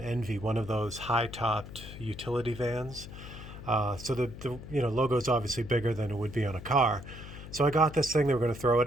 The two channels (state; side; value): noise; left; hum, 13 dB below the sound